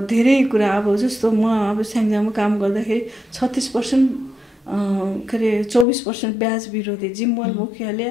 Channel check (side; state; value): right; drops out; at 5.9 s